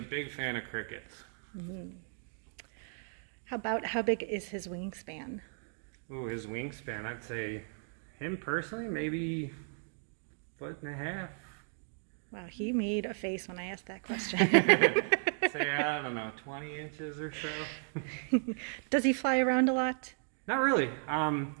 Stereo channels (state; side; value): silent; left; 55 dB below the other